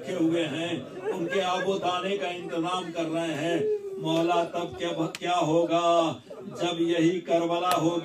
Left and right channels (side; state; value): both; identical; correlation 1.00